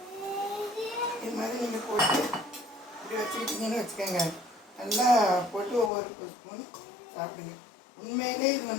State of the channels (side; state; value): right; drops out; at 5.9 s